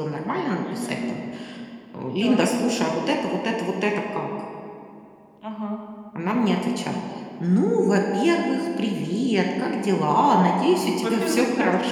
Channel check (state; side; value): identical; both; correlation 1.00